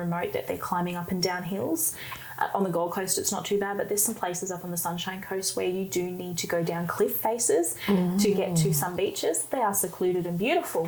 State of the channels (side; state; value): both; identical; correlation 1.00